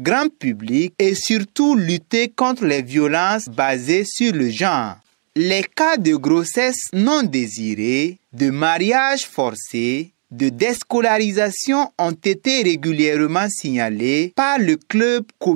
public et surtout lutter contre les violences basées sur le genre. Les cas de grossesse non désirée, de mariage forcé, de déscolarisation ont été régulièrement signalés par le club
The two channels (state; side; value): silent; left; digital silence